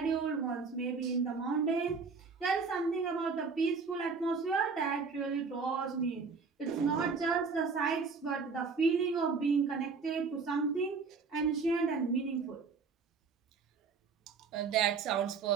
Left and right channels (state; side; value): quieter; left; 4.9 dB